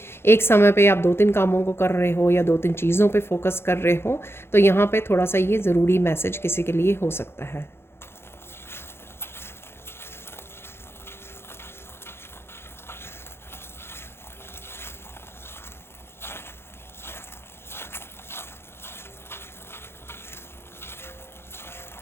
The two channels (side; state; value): right; late; 0.12 ms